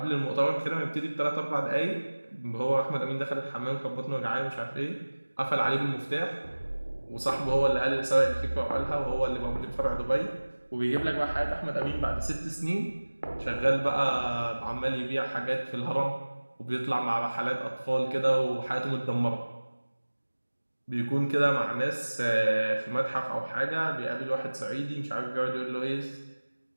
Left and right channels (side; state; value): both; inverted; correlation -1.00